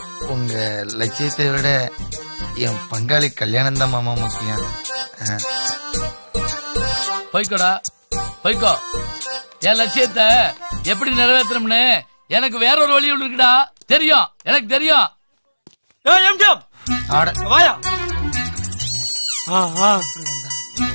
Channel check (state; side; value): inverted; both; correlation -1.00